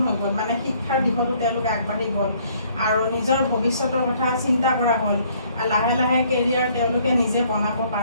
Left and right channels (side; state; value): both; inverted; correlation -0.62